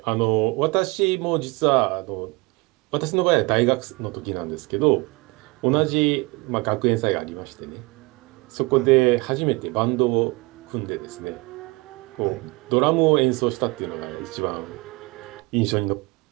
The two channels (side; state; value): left; quieter; 25.4 dB